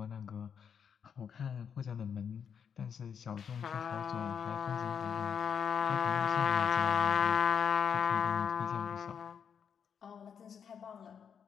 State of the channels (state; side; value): quieter; right; 7.3 dB